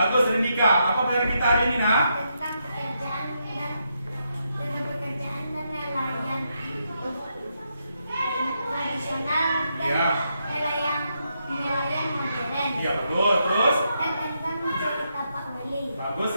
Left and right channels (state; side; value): inverted; both; correlation -0.81